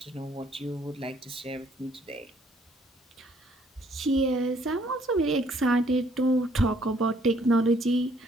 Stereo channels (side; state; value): both; normal; correlation 0.64